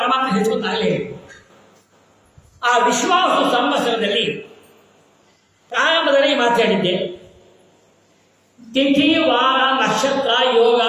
ಹೆಚ್ಚುತ್ತಾಗಲೇ. ಆ ವಿಶ್ವಾವಸು ಸಂವತ್ಸರದಲ್ಲಿ ಪ್ರಾರಂಭದಲ್ಲಿ ಮಾತಾಡಿದ್ದೆ. ತಿಥಿ, ವಾರ, ನಕ್ಷತ್ರ, ಯೋಗ,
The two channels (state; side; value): identical; both; correlation 1.00